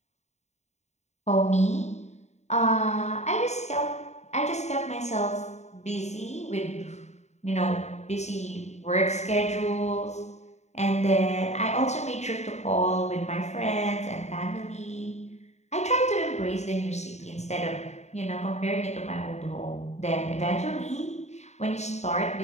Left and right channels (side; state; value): right; late; 0.32 ms